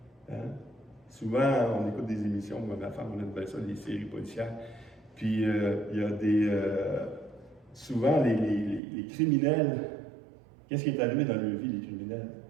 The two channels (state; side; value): drops out; left; at 8.8 s